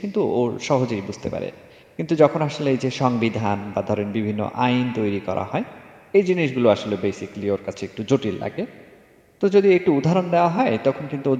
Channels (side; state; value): both; identical; correlation 1.00